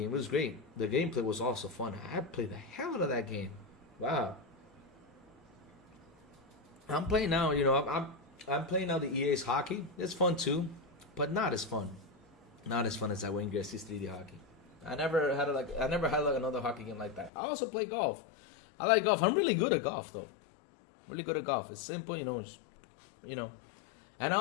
It was great. The gameplay was also fun. I played the hell out of that game. Wow. I'm playing now. I'm playing now the EA's hockey. It's fun too, but not as fun as that Wayne Gretzky's 3D Hockey. I never had another hockey game like that. I also play golf. I like golf. I'm really good at golf, though. It's simple, And I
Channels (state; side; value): drops out; right; at 17.3 s